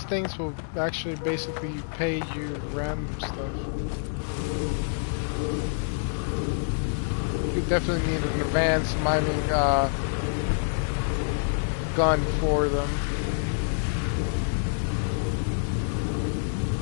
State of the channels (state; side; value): silent; right; digital silence